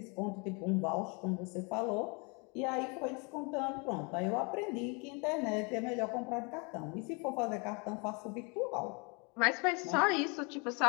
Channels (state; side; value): quieter; right; 31.8 dB